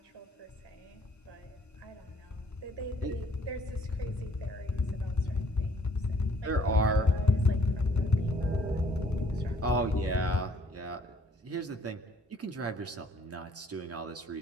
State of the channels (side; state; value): both; normal; correlation 0.62